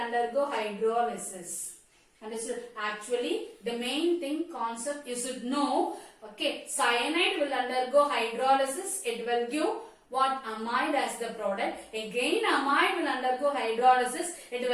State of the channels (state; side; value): identical; both; correlation 1.00